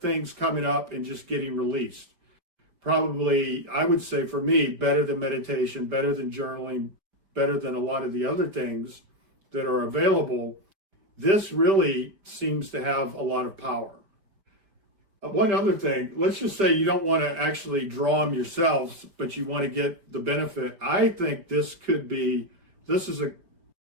coming up and just getting released. Probably, I would say for me, better than meditation, better than journaling, better than a lot of the other things that are available. This really seems to have a lot of power. One other thing, let's just say you don't want to actually draw them yourselves, but you want to get the benefit. I think this is a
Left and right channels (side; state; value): left; late; 5.1 ms